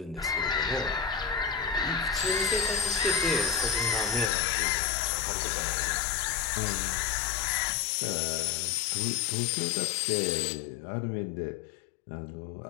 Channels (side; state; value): right; drops out; at 4.3 s